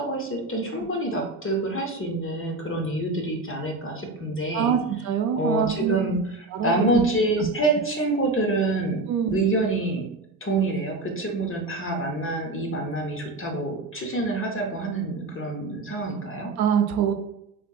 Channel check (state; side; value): quieter; left; 3.1 dB